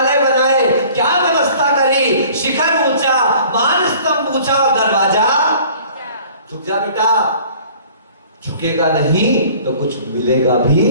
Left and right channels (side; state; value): both; inverted; correlation -0.50